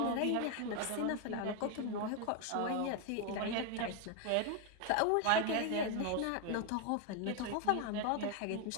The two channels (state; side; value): different; both; correlation 0.01